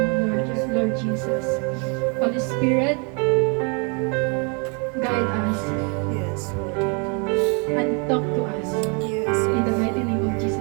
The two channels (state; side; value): quieter; left; 36.1 dB